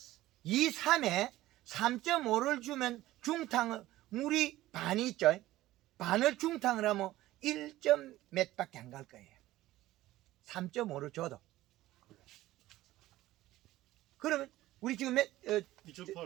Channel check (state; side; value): quieter; left; 16.0 dB